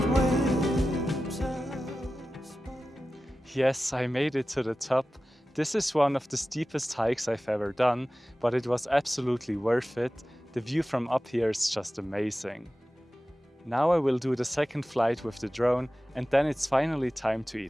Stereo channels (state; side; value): normal; both; correlation 0.95